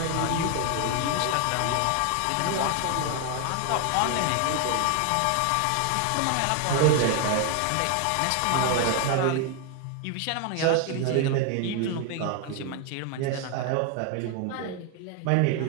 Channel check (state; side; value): different; both; correlation 0.01